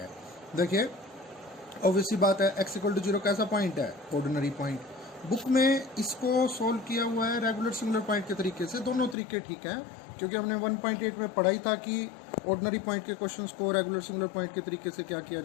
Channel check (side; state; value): right; drops out; at 9.2 s